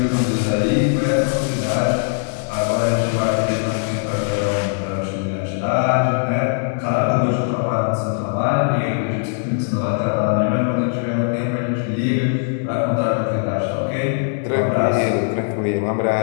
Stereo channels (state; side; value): silent; right; digital silence